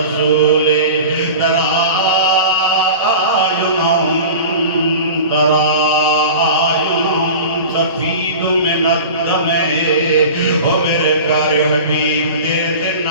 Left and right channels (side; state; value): both; inverted; correlation -0.35